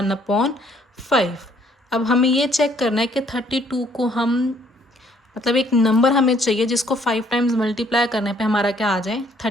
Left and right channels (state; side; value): normal; both; correlation 0.64